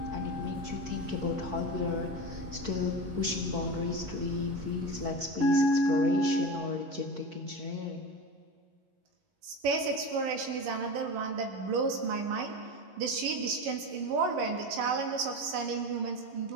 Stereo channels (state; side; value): late; left; 11 ms